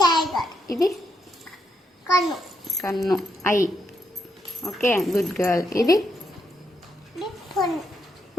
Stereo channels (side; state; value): both; normal; correlation 0.79